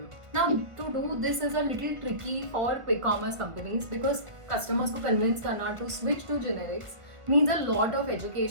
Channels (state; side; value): late; left; 1.5 ms